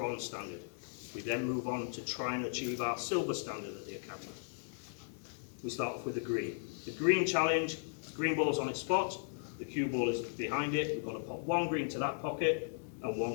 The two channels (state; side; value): silent; right; 53 dB below the other